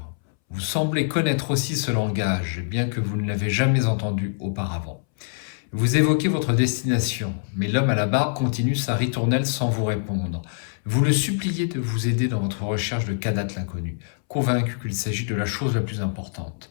Vous semblez connaître aussi ce langage, bien que vous ne l'avez jamais entendu auparavant. Vous évoquez votre destination, mais l'homme à la barbe continue sa ritournelle sans vous répondre. Vous le suppliez de vous aider dans votre recherche de Kadath l'inconnu. convaincu qu'il s'agit de la chose la plus importante.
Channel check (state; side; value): silent; right; 62 dB below the other